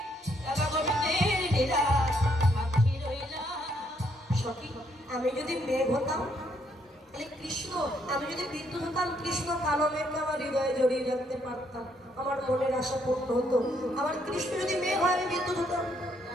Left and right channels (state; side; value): normal; both; correlation 0.72